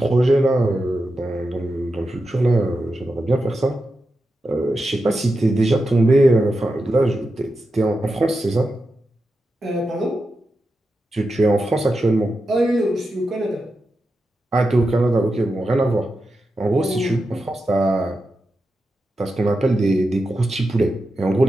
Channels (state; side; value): normal; both; correlation 0.89